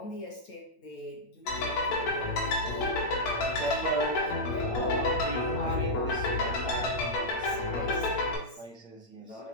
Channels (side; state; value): right; late; 8.8 ms